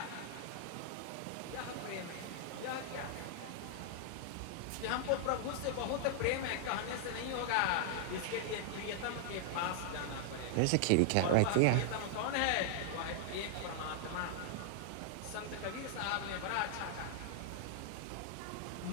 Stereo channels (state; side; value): different; both; correlation -0.01